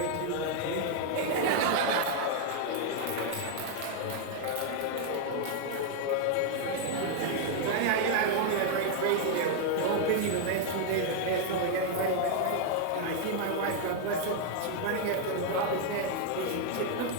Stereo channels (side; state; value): both; different; correlation 0.00